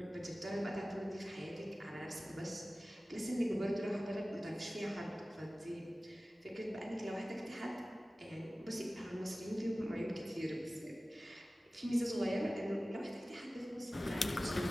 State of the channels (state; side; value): normal; both; correlation 0.97